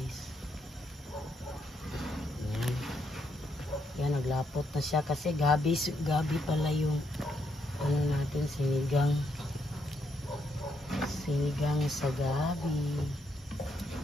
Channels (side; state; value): both; normal; correlation 0.76